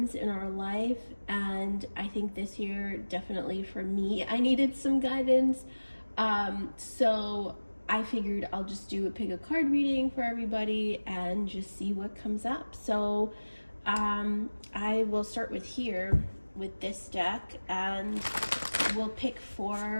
in our life, and I think this year, definitely for me, I needed some guidance. So I figured I'll just pick a card reading for everybody and just see what comes up. So I will start with this deck, and we'll make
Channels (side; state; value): both; inverted; correlation -1.00